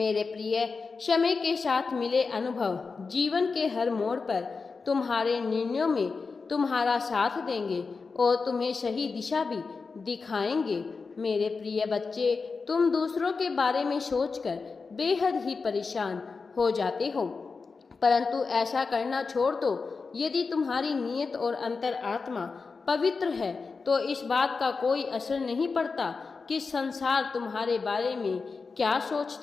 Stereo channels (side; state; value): right; quieter; 4.6 dB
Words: प्रिय, समय के साथ मिले अनुभव जीवन के हर मोड़ पर तुम्हारे निर्णयों में तुम्हारा साथ देंगे और तुम्हें सही दिशा भी दिखाएंगे। मेरे प्रिय बच्चे, तुम दूसरों के बारे में सोचकर बेहद ही परेशान हो जाते हो, परंतु ऐसा करना छोड़ दो। यदि तुम्हारी नीयत और अंतर आत्मा पवित्र है, तो इस बात का कोई असर नहीं पड़ता कि संसार तुम्हारे बारे में क्या